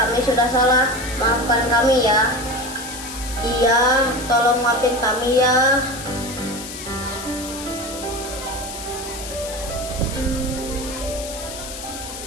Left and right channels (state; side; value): noise; left; hiss, 10 dB below the sound